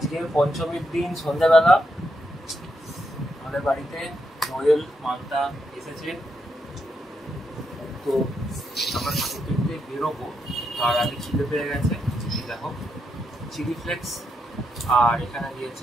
পঞ্চমীর দিন সন্ধ্যাবেলা আমাদের বাড়িতে নোয়েল মান্তা এসেছে। তো আমরা ঠাকুর দেখতে বেরোবো, তার আগে খিদে পেয়ে গেছে। দেখো চিলি ফ্লেক্স, আর এখানে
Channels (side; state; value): both; normal; correlation 0.81